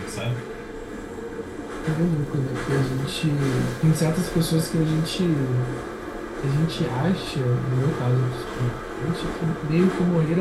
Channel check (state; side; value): identical; both; correlation 1.00